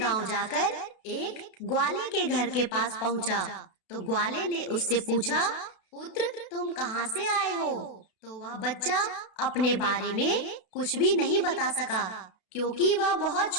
जाकर एक ग्वाले के घर के पास पहुंचा। तो ग्वाले ने उससे पूछा, पुत्र तुम कहाँ से आए हो? तो वह बच्चा अपने बारे में कुछ भी नहीं बता सका क्योंकि वह बहुत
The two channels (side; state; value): right; late; 32 ms